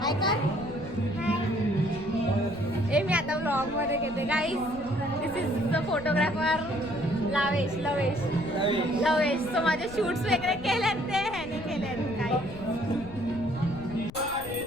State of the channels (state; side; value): noise; left; rumble, 15 dB below the sound